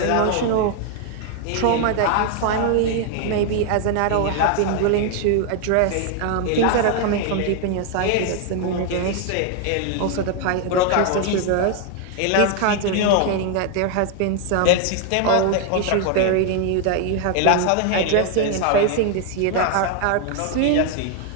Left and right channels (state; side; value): different; both; correlation 0.00